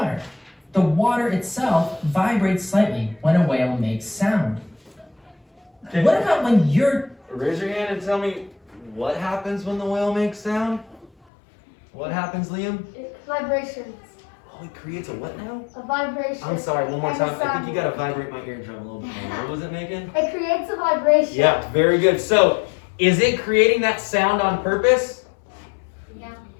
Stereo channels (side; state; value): right; drops out; at 11.1 s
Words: The water itself vibrates slightly when a whale makes sound. Okay. What about when you're... Raise your hand and tell me what happens when the whale makes sound? What happens, Liam? Vibrations. Oh, it creates a what now? A vibration. I'm sorry, one more And time. a I think sound you gotta vibrate my eardrum a little bit more. What was it making? It creates a vibration. Yeah, very good. So, is it creating that sound on purpose? Yeah.